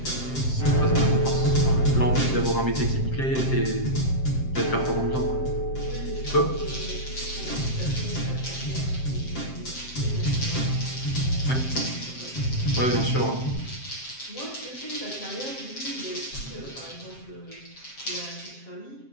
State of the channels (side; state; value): right; late; 7.6 ms